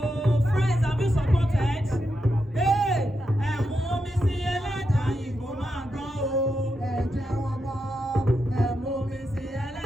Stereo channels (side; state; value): both; normal; correlation 0.85